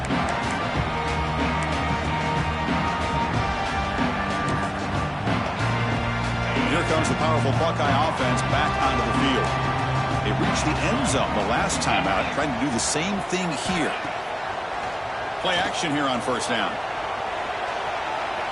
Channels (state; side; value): identical; both; correlation 1.00